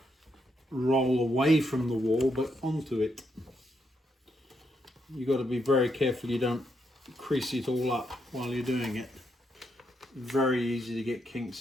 roll away from the wall but onto it. You've got to be very careful you don't crease it all up while you're doing it. Very easy to get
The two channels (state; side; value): normal; both; correlation 0.79